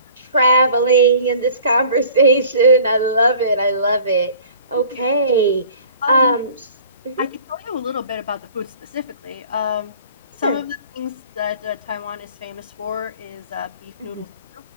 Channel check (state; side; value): inverted; both; correlation -0.48